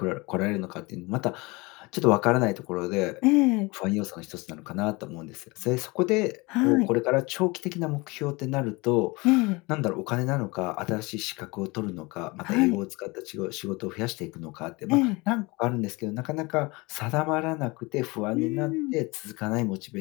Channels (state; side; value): quieter; right; 25.0 dB